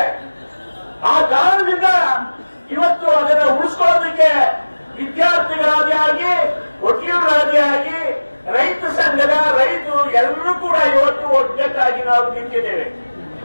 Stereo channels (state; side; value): inverted; both; correlation -1.00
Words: ಆ ಕಾರಣದಿಂದ ಇವತ್ತು ಅದನ್ನು ಉಳಿಸ್ಕೊಳ್ಳೋದಕ್ಕೆ ವಿದ್ಯಾರ್ಥಿಗಳಾದಿ ಆಗಿ, ವಕೀಲರಾದಿ ಆಗಿ, ರೈತ ಸಂಘದ ರೈತರು ಎಲ್ಲರೂ ಕೂಡ ಇವತ್ತು ಒಗ್ಗಟ್ಟಾಗಿ ನಾವು ನಿಂತಿದ್ದೇವೆ.